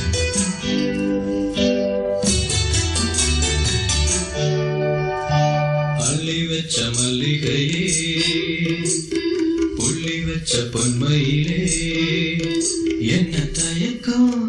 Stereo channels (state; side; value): identical; both; correlation 1.00